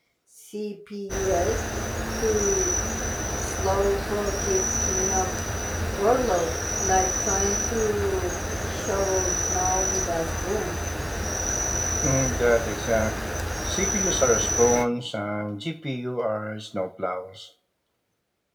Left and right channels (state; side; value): identical; both; correlation 1.00